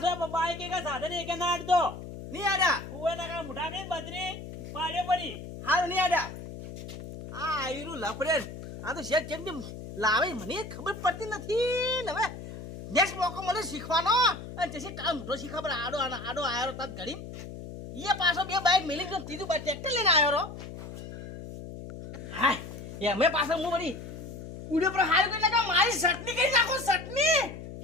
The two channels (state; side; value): noise; left; hum, 11 dB below the sound